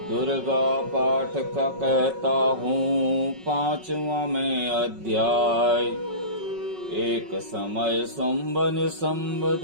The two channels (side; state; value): left; late; 5.4 ms